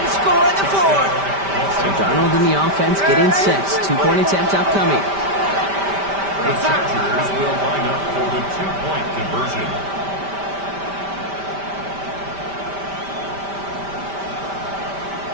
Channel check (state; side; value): late; left; 5.1 ms